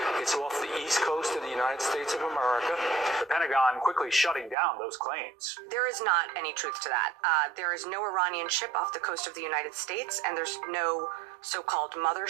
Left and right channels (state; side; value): drops out; left; at 4.5 s